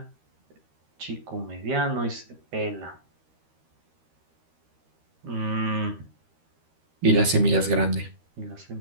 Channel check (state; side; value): late; left; 13 ms